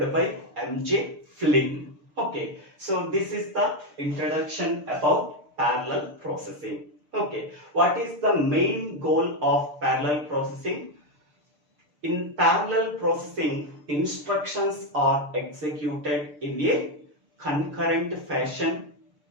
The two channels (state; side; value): late; left; 6.8 ms